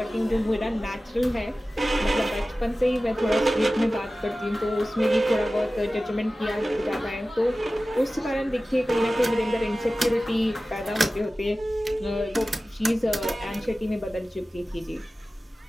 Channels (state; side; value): normal; both; correlation 0.96